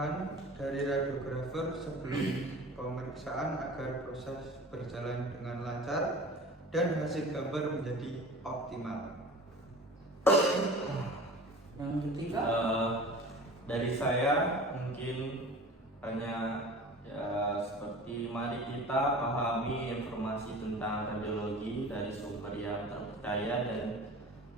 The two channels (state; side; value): normal; both; correlation 0.39